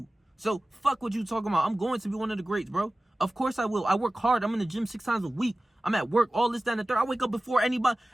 So fuck what you talking about. I'm going to be one of the greats, bro. Of course I will. I work hard. I'm in the gym 6 times a week. I'm at work, all this, that, and the third. I wake up before anybody.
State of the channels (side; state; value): both; normal; correlation 0.97